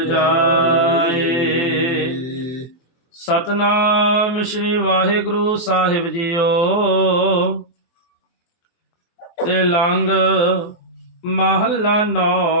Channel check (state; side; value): late; right; 23 ms